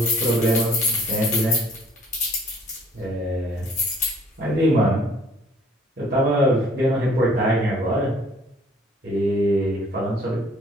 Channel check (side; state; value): both; normal; correlation 0.58